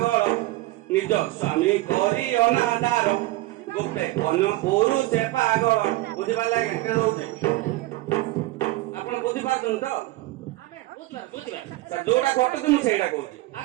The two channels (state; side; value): quieter; left; 18.8 dB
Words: ନିଜ ସ୍ୱାମୀ କରି ଅନାଦାର ଗୋଟେ ଅନ୍ୟ ପୁରୁଷ ପାଗଳ ବୁଝିପାରିଲେ ଆଜ୍ଞା କେন ହଉଛି ଆପଣ ବୁଝିପାରୁଛନ୍ତି ତ ଯୋଉଟା ଘଟୁଛି ମୁଁ ସେଇଟା କହୁଛି